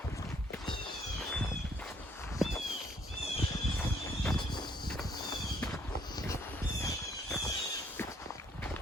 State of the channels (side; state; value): both; normal; correlation 0.65